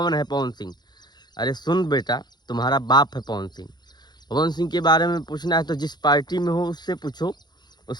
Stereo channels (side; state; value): right; late; 0.21 ms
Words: है पवन सिंह। अरे सुन बेटा, तुम्हारा बाप है पवन सिंह। पवन सिंह के बारे में पूछना है तो जिस पार्टी में हो उससे पूछो,